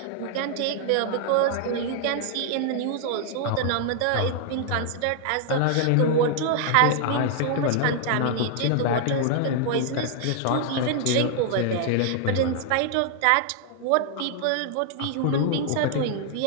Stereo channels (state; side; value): different; both; correlation 0.00